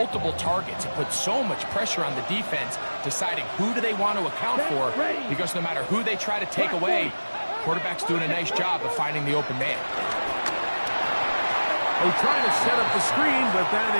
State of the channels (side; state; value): both; inverted; correlation -1.00